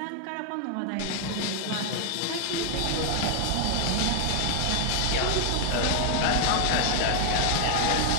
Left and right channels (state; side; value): different; both; correlation 0.00